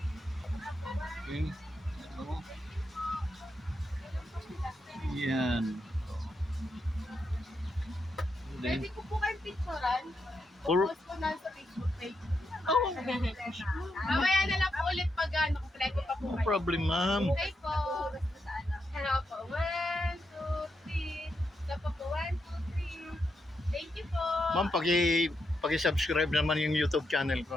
Okay. Ano? Yan. Pwede ko po kayong picturean. Or- Post ko na sa Facebook page. Oh, Mamaya na lang po ulit pag kompleto pa po no kayo. problem, ma'am. Okay po. Hello po. 1, 2, 3. Isa pa po. 1, 2, 3. Thank you po. Ma'am, paki-subscribe naman yung YouTube channel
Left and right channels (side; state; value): both; normal; correlation 0.83